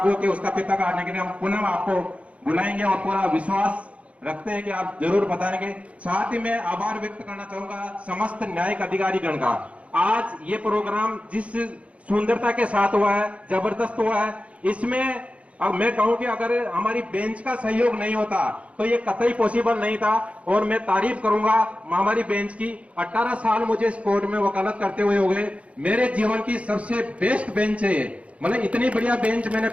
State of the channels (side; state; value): left; late; 0.064 ms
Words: होकर उसका फीता काटने के लिए हम पुनः आपको बुलाएंगे और पूरा विश्वास रखते हैं कि आप जरूर बताएंगे। साथ ही मैं आभार व्यक्त करना चाहूंगा समस्त न्यायिक अधिकारीगण का। आज ये प्रोग्राम जिस सुंदरता के साथ हुआ है, जबरदस्त हुआ है, इसमें अब मैं कहूं कि अगर हमारी बेंच का सहयोग नहीं होता तो ये कतई पॉसिबल नहीं था। और मैं तारीफ करूंगा हमारी बेंच की। 18 साल मुझे इस कोर्ट में वकालत करते हुए हो गए, मेरे जीवन की सबसे बेस्ट बेंच है ये। मतलब इतनी बढ़िया बेंच मैंने